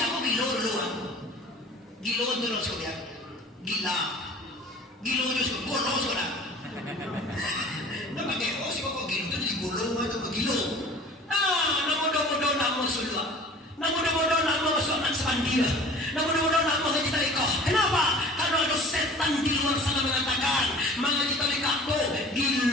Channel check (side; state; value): both; normal; correlation 0.44